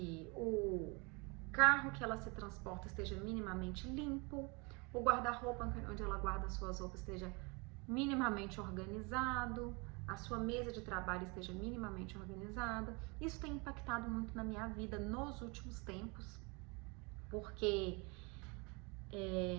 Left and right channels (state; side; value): quieter; left; 29.5 dB